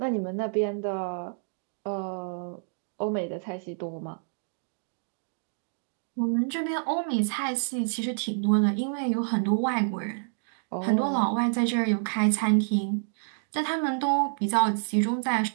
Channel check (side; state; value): left; silent; digital silence